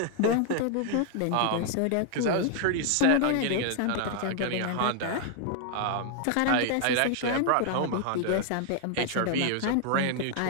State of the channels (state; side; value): different; both; correlation 0.00